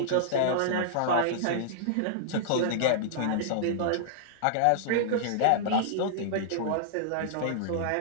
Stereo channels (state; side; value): different; both; correlation -0.02